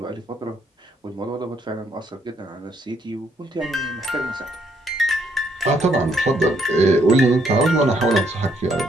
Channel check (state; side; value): normal; both; correlation 0.71